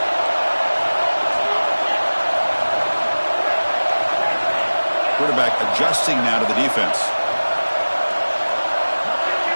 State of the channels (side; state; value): both; inverted; correlation -1.00